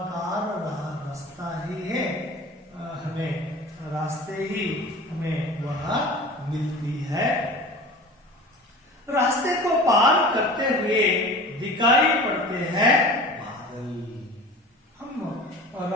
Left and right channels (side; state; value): both; normal; correlation 0.38